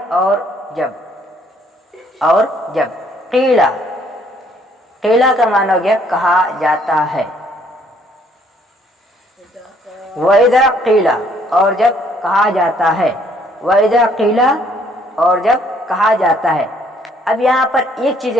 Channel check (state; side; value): normal; both; correlation 0.64